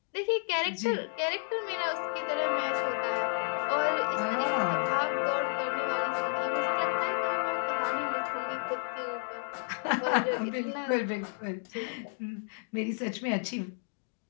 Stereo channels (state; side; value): silent; right; 57 dB below the other